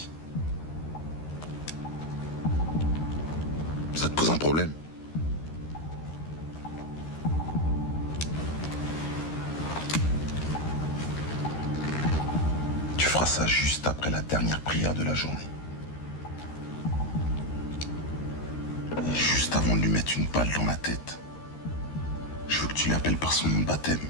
Ça te pose un problème? Tu feras ça juste après la dernière prière de la journée. Et juste avant de lui mettre une balle dans la tête, je veux que tu l'appelles par son nom de baptême.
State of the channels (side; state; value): right; late; 13 ms